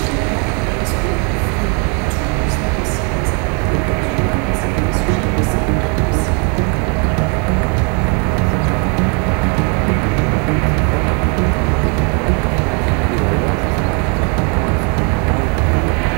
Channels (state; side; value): quieter; left; 35.5 dB